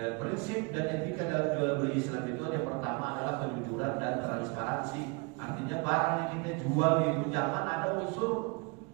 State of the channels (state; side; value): quieter; left; 30.0 dB